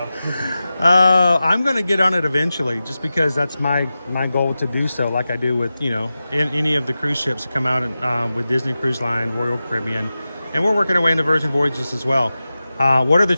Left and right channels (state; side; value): inverted; both; correlation -0.94